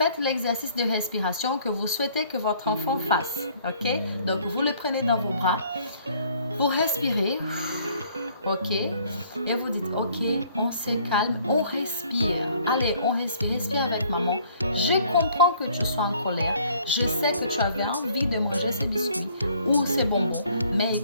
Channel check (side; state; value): both; inverted; correlation -0.59